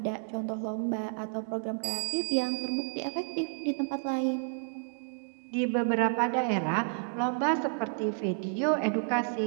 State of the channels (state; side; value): silent; left; digital silence